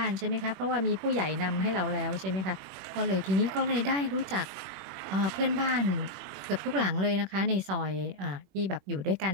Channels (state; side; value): late; left; 21 ms